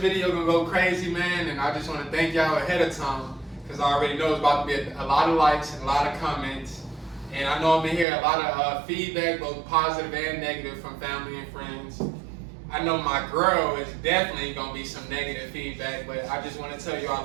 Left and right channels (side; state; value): left; drops out; at 8.1 s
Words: gonna go crazy, man, and I just want to thank y'all ahead of time because I already know it's about to be a lot of likes and a lot of comments, and I know I'm gonna hear a lot of feedback, both positive and negative, from family and friends. I know my girl is definitely gonna be some negative feedback, but I just want to tell you